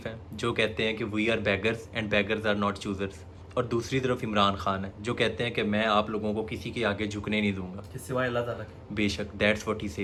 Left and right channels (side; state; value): both; identical; correlation 1.00